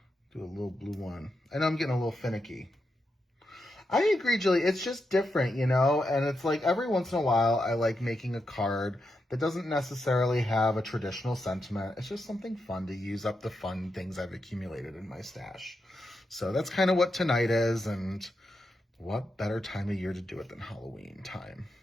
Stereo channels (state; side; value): normal; both; correlation 0.85